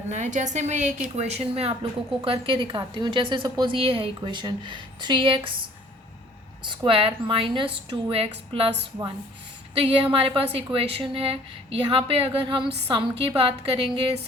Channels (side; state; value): both; normal; correlation 0.55